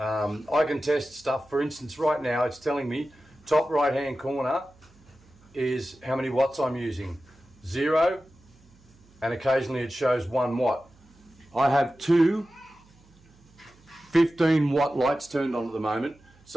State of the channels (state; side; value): noise; right; hum, 28 dB below the sound